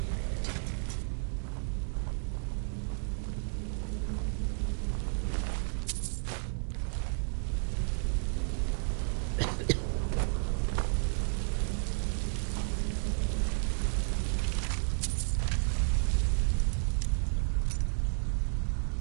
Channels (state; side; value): silent; left; digital silence